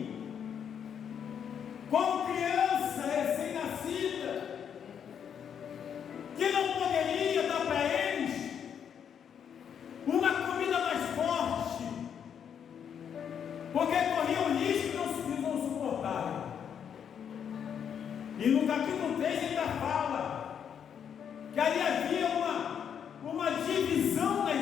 como criança recém-nascida, que não poderia dar para eles uma comida mais forte, porque corria o risco E no capítulo 3 ele ainda fala que ali havia uma divisão na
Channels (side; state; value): right; quieter; 8.1 dB